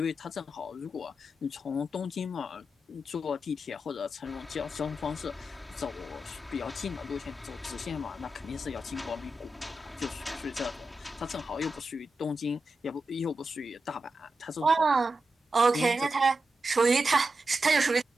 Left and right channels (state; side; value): normal; both; correlation 0.89